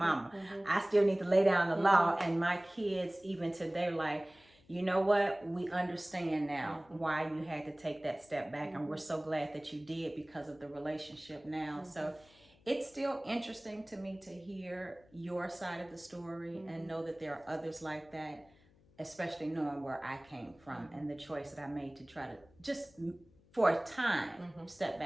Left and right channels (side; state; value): left; noise; hum, 29 dB below the sound